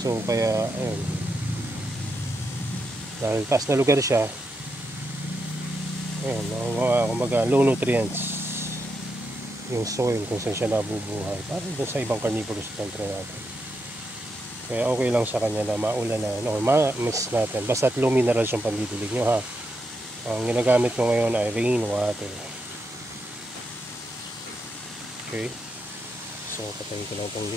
kaya ayun, dahil taas na lugar siya, ayun, kumbaga low nutrients yung soil kung saan siya nabubuhay, parang doon sa ibang carnivorous plant natin. Kaya okay lang sa kanya na maulan na, no, ma-mix natin basta't low minerals yung pandidilig nyo, ha. Ang ginagamit ko ngayon ay rain water. Okay, so patayin ko lang itong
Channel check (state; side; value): normal; both; correlation 0.83